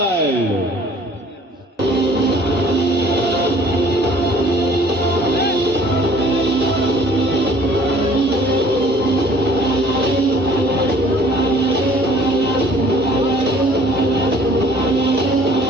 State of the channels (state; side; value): normal; both; correlation 0.54